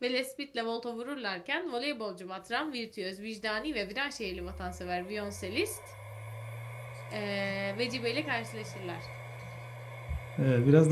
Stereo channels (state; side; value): identical; both; correlation 1.00